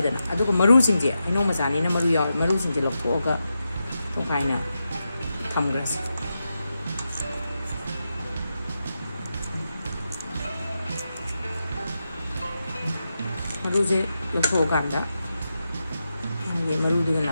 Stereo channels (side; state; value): both; inverted; correlation -0.88